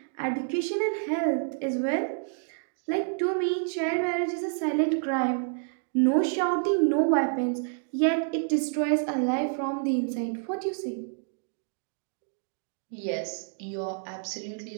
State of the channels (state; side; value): silent; left; digital silence